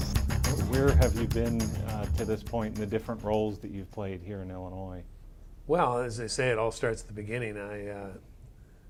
Where have you been to this point in the different roles that you've played here in Illinois? Well, as they say, it all starts at the beginning. I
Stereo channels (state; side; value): identical; both; correlation 1.00